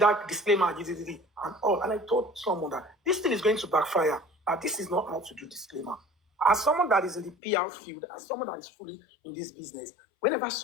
disclaimer and all. And I told someone that this thing is going to backfire. This is not how to do disclaimer. As someone that is in the PR field, as someone that is fully in this business, whenever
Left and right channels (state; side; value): drops out; right; at 7.4 s